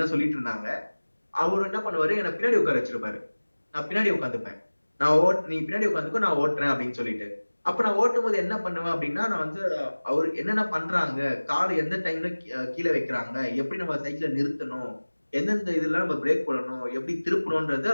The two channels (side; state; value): both; inverted; correlation -1.00